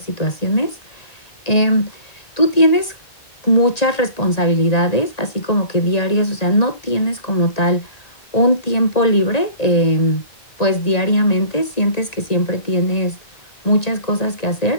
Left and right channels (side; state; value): right; late; 1.9 ms